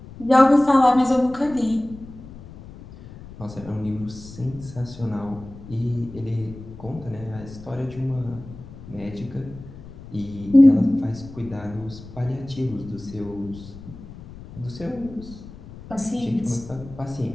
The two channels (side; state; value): left; noise; rumble, 16 dB below the sound